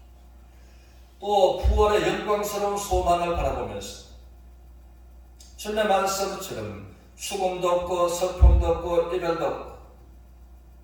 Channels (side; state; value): both; identical; correlation 1.00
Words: 또 부활의 영광스러운 소망을 바라보면서 주님의 말씀처럼 죽음도 없고 슬픔도 없고 이별도 없고